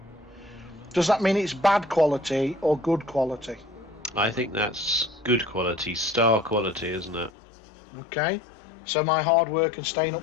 Does that mean it's bad quality or good quality? I think that's good quality, star quality, isn't it? Okay. So my hard work and staying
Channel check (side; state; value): right; drops out; at 7.3 s